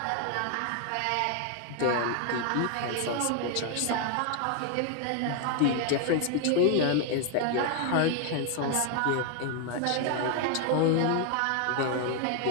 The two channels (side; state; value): both; different; correlation 0.00